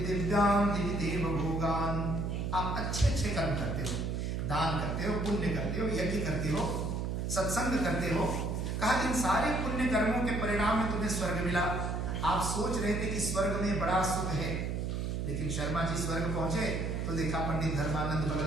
दिव्यान् दिविदेव भोगान्। आप अच्छे अच्छे कर्म करते हो, दान करते हो, पुण्य करते हो, यज्ञ करते हो, सत्संग करते हो, कहा इन सारे पुण्य कर्मों के परिणाम में तुम्हें स्वर्ग मिला। आप सोच रहे थे कि स्वर्ग में बड़ा सुख है, लेकिन शर्मा जी स्वर्ग पहुंचे तो देखा पंडित धर्मानंद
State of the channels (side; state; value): right; noise; hum, 1 dB below the sound